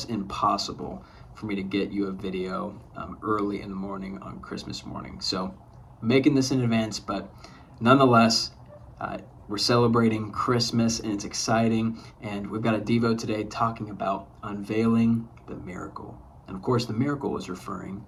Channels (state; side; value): identical; both; correlation 1.00